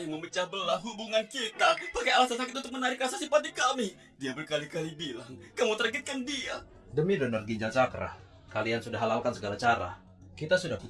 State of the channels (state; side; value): identical; both; correlation 1.00